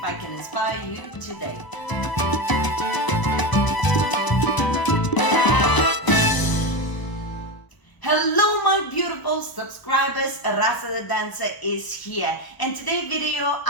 I can inspire you today. Hello my beautiful subscribers, Rasa the dancer is here, and today's video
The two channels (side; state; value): right; late; 1.0 ms